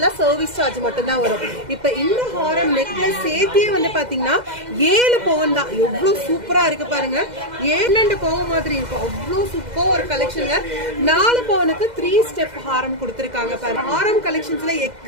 சர்வீஸ் சார்ஜ் மட்டும் தான் வரும். இப்ப இந்த ஹாரம் நெக்லஸ் சேர்த்தியே வந்து பாத்தீங்கன்னா 7 பவுன் தான். எவ்வளவு சூப்பரா இருக்கு பாருங்க. 7 பவுன் மாதிரி இருக்கும். அவ்வளவு சூப்பர் ஒரு கலெக்ஷன். 4 பவுனுக்கு 3 ஸ்டெப் ஹாரம் கொடுத்திருக்காங்க பாருங்க. ஹாரம் கலெக்ஷன்ஸ்ல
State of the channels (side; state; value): left; late; 2.0 ms